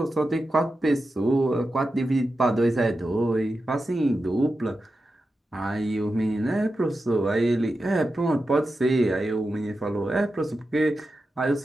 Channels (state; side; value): normal; both; correlation 0.91